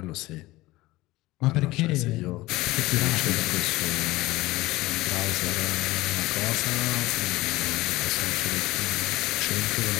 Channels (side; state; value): right; quieter; 19.1 dB